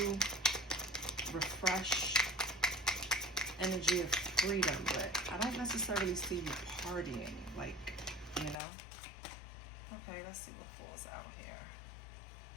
refreshed energy of freedom, but I don't necessarily see you partying, like, you know. Okay, let's see what falls out here.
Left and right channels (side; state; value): right; drops out; at 8.6 s